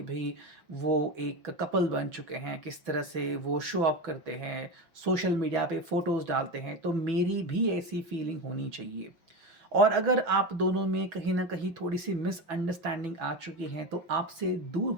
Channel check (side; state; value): left; late; 6.1 ms